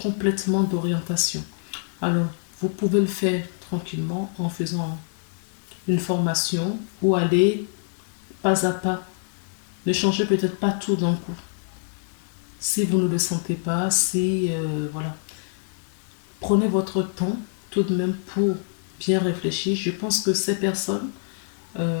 d'orientation. Alors, vous pouvez le faire tranquillement en faisant une formation ou aller pas à pas. Ne changez peut-être pas tout d'un coup. Si vous ne le sentez pas, voilà. Prenez votre temps tout de même pour bien réfléchir. Je pense que ces personnes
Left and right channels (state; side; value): silent; right; digital silence